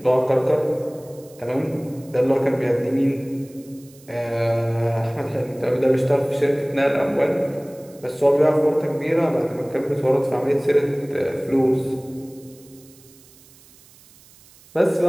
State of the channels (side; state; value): right; noise; hiss, 26 dB below the sound